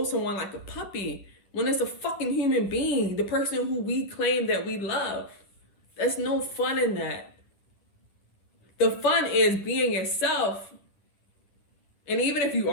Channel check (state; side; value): late; right; 10 ms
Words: someone like a puppy when it's a fucking human being, the person who we claim that we love? There's no fun in that. The fun is being yourself. And even if you